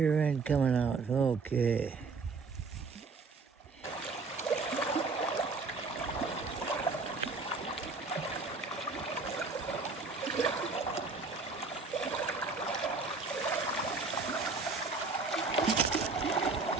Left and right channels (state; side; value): quieter; left; 4.1 dB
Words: end coming out. Okay.